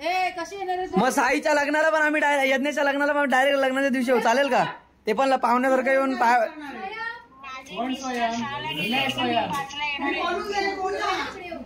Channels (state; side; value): identical; both; correlation 1.00